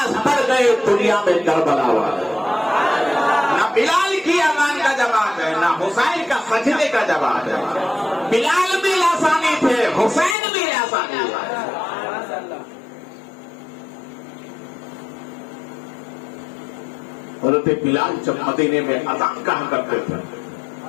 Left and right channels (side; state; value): right; drops out; at 10.4 s